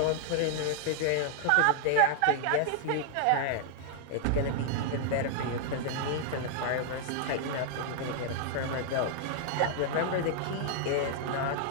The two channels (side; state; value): both; different; correlation 0.00